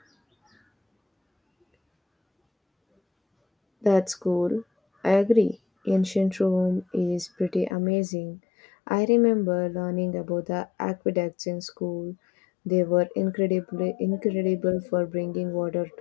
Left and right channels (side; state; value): right; drops out; at 7.8 s